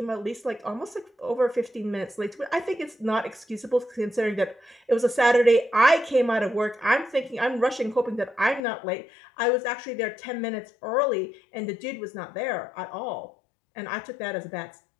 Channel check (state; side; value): drops out; right; at 8.6 s